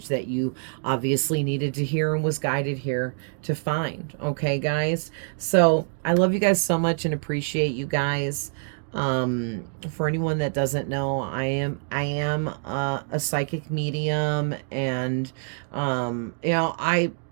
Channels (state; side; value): silent; left; digital silence